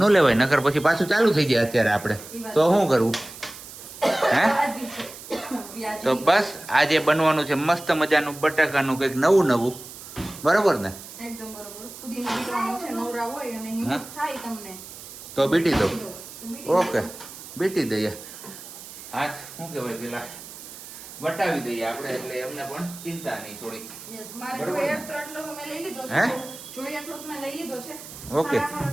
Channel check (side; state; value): right; noise; hiss, 14 dB below the sound